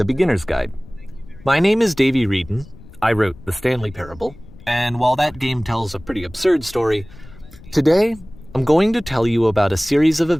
Beginner's Guide. My name is Davey Reedon. I wrote The Stanley Parable, and while that game tells a pretty absurd story, today I'm going to tell you about a series of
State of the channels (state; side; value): noise; left; rumble, 20 dB below the sound